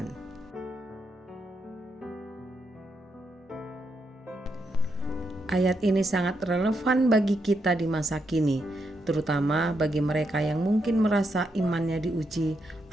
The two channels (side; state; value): both; normal; correlation 0.81